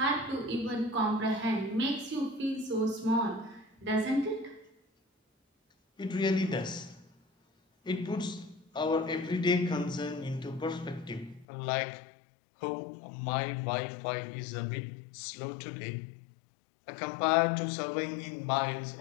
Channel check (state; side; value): drops out; right; at 11.5 s